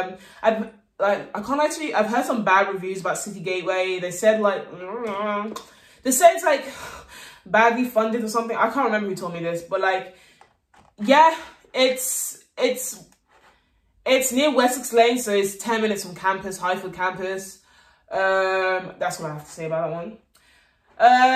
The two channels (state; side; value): identical; both; correlation 1.00